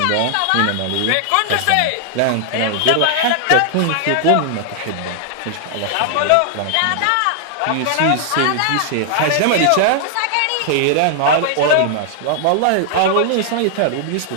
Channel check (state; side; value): different; both; correlation -0.01